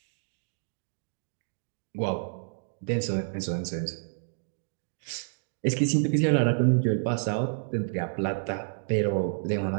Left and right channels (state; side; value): silent; left; digital silence